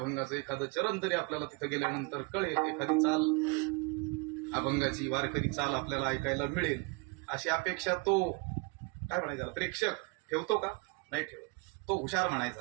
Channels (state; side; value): quieter; left; 29.7 dB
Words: एखादं चरण तरी आपल्याला तिथं गेल्यानंतर कळेल, एखादी चाल अभंगाची वारकरी चाल आपल्याला ऐकायला मिळेल, अशी अपेक्षा तो काय म्हणायचा प्रेक्षक ठेवतो का? नाही ठेवत. तो हुशार